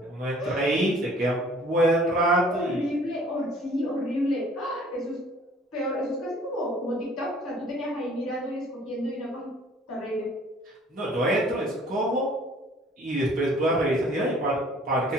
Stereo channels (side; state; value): both; normal; correlation 0.54